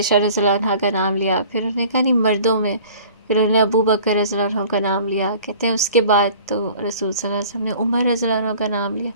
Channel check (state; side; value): inverted; both; correlation -0.47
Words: رضی اللہ عنہا کا نام لیا، پھر انہوں نے کہا نہیں مردوں میں، پھر انہوں نے ابو بکر رضی اللہ عنہ کا نام لیا. کہتے ہیں اس کے بعد تو رسول صلی اللہ علیہ وسلم نے عمر رضی اللہ عنہ کا نام لیا.